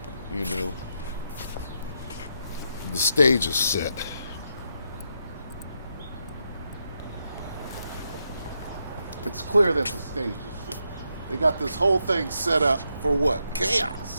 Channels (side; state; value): both; inverted; correlation -0.81